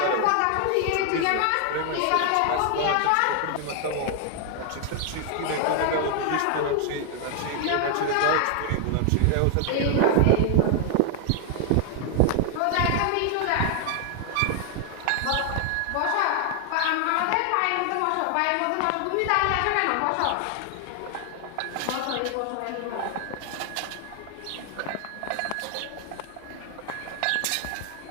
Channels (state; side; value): different; both; correlation 0.00